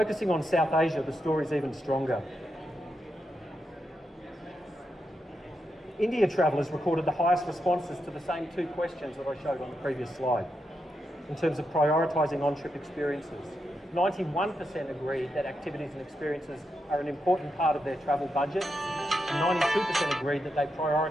on South Asia, the story is even stronger. India travellers recorded the highest responses to the same two questions that I showed on the previous slide in terms of prioritising on-trip experiences. 91% agreed that activities and experiences are an important part of their travel budget, and 92% agreed that they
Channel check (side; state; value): both; normal; correlation 0.85